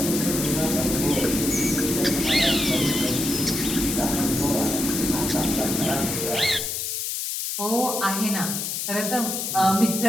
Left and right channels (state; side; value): noise; left; hiss, 2 dB below the sound